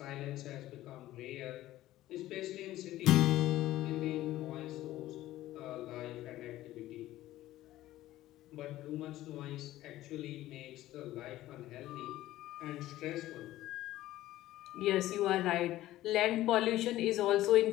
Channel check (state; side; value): quieter; right; 15.2 dB